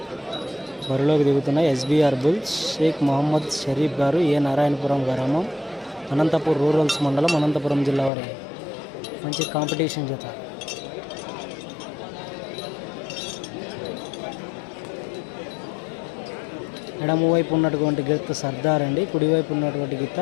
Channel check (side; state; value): right; drops out; at 8.1 s